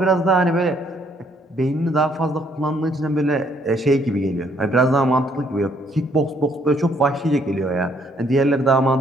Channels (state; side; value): normal; both; correlation 0.67